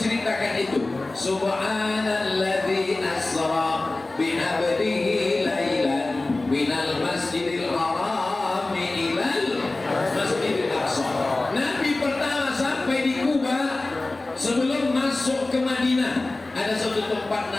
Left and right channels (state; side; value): quieter; right; 3.0 dB